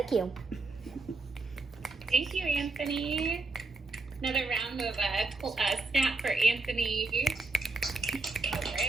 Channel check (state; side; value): quieter; left; 3.4 dB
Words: you. Thank you, Anthony. Another round of snap for Anthony. All